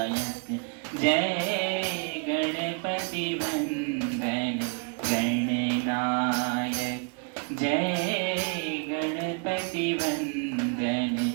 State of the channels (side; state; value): left; quieter; 37.5 dB